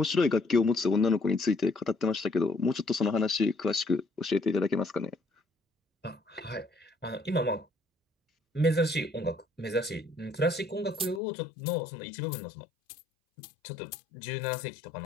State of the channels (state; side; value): drops out; right; at 11.2 s